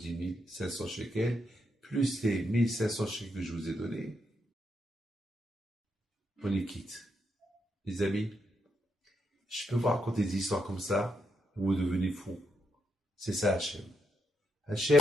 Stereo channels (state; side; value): normal; both; correlation 0.81